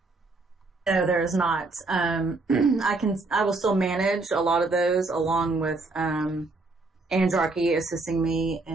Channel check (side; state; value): left; quieter; 3.4 dB